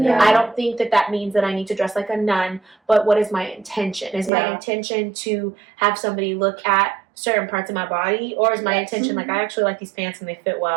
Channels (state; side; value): drops out; left; at 4.3 s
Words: don't think that means that I need to dress like a nun, but what is my intention? Is my intention to have somebody look at certain parts of my body, or is my intention like, I actually like these pants and they fit